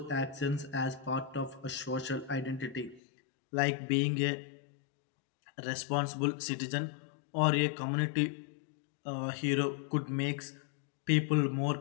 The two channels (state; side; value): drops out; right; at 3.0 s